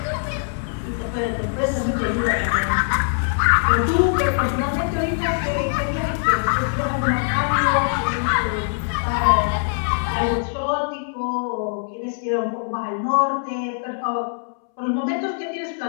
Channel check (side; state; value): right; silent; 64 dB below the other